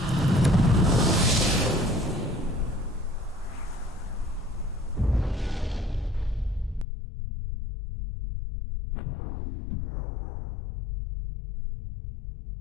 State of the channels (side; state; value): right; drops out; at 6.9 s